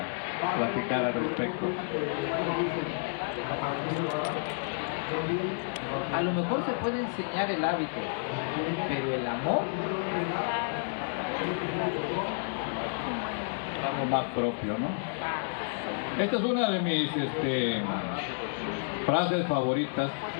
platicar al respecto. A lo mejor se puede enseñar el hábito, pero el amor, algo más propio, ¿no? Esta es una de mis frases favoritas,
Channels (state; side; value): silent; right; 57 dB below the other